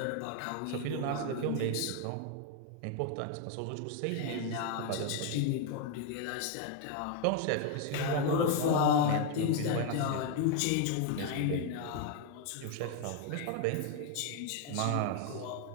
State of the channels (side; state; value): both; different; correlation 0.00